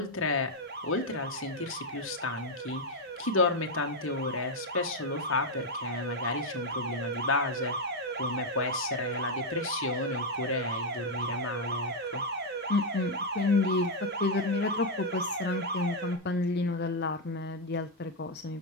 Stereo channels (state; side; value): normal; both; correlation 0.01